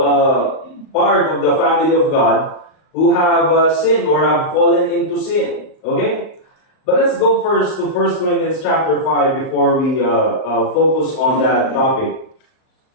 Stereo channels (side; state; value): right; late; 38 ms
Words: part of the family of God, who have sinned or have fallen into sin. Okay? But let's go first to 1 Corinthians chapter 5 before we focus on that topic.